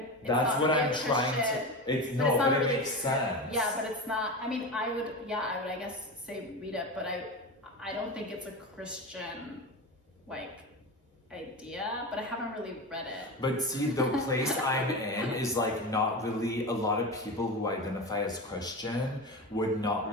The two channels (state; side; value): normal; both; correlation 0.24